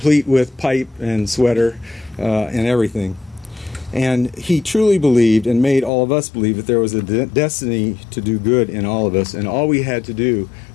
with pipe and sweater and everything. And he truly believed and made all of us believe that there was a destiny to do good in all of us, and all we had to do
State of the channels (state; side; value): drops out; right; at 5.9 s